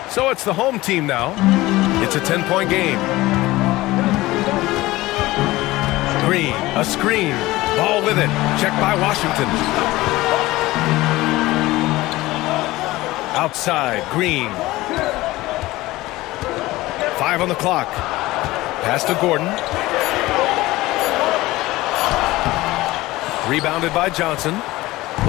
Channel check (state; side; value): quieter; right; 18.6 dB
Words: So it's the home team now. It's a 10-point game. Green, a screen. Ball with it. Checked by Washington. Outside, Green. 5 on the clock. Pass to Gordon. Rebounded by Johnson.